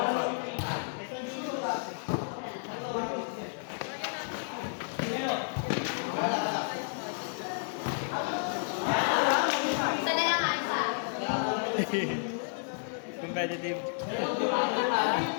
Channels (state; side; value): silent; right; 57 dB below the other